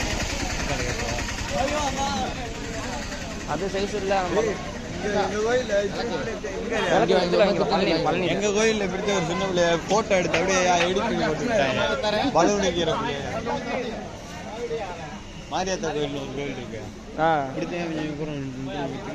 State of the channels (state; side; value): identical; both; correlation 1.00